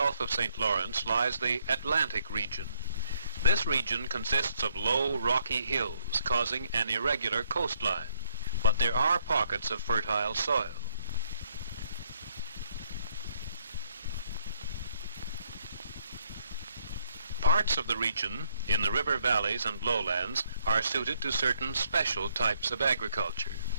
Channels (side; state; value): both; inverted; correlation -0.69